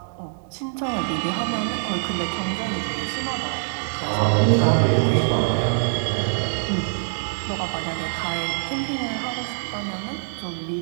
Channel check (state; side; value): silent; left; digital silence